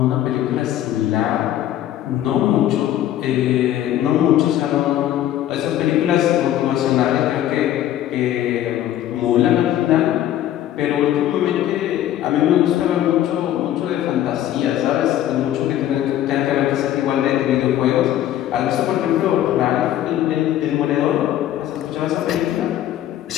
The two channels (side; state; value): right; quieter; 12.2 dB